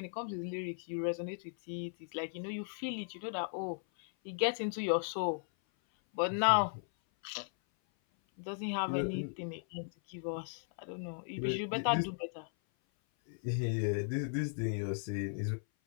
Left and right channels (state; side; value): silent; right; 53 dB below the other